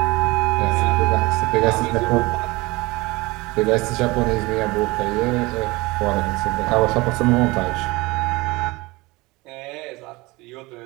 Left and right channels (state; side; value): quieter; left; 22.6 dB